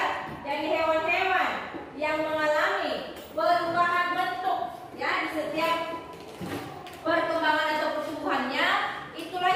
dari hewan-hewan yang mengalami perubahan bentuk ya di setiap perkembangan atau pertumbuhannya, itulah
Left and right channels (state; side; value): identical; both; correlation 1.00